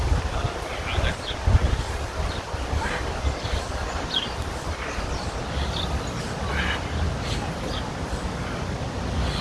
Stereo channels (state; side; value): identical; both; correlation 1.00